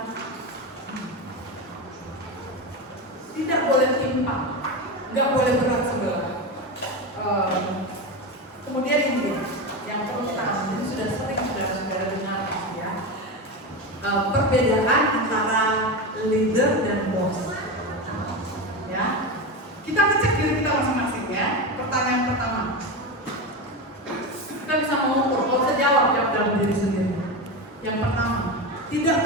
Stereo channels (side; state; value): both; normal; correlation 0.19